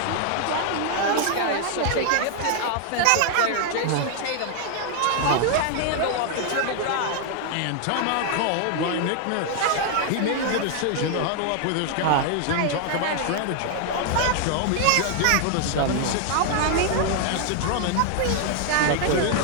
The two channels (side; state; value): both; different; correlation 0.00